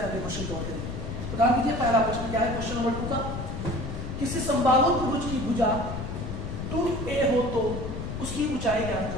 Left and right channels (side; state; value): left; noise; rumble, 6 dB below the sound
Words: अगले क्वेश्चन कवर करेंगे. तो ध्यान दीजिए, पहला प्रश्न क्या है क्वेश्चन नंबर 2 का. किसी समबाहु त्रिभुज की भुजा 2a हो तो उसकी ऊंचाई ज्ञात